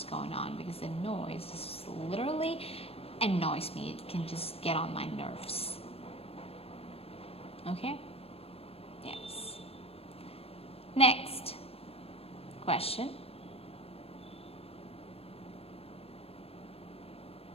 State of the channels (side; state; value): right; late; 0.28 ms